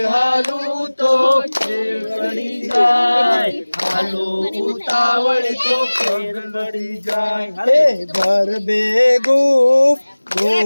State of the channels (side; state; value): both; inverted; correlation -1.00